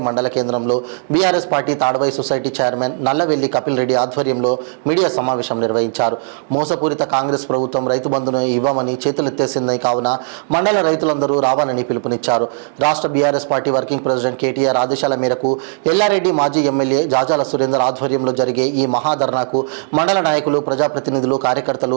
మండల కేంద్రంలో BRS party Tadvai society chairman Nallavelli Kapil Reddy ఆధ్వర్యంలో మీడియా సమావేశం నిర్వహించారు. మోసపూరిత కాంగ్రెస్ ప్రభుత్వం రైతు బంధును ఇవ్వమని చేతులెత్తేసిందని కావున మండల రైతులందరూ రావాలని పిలుపునిచ్చారు. రాష్ట్ర BRS party working president KTR ఆదేశాల మేరకు ఎల్లారెడ్డి మాజీ ఎమ్మెల్యే జాజాల సురేందర్ ఆధ్వర్యంలో జరిగే ఈ మహాధర్నాకు మండల నాయకులు, ప్రజాప్రతినిధులు, కార్యకర్తలు,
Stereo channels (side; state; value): left; silent; digital silence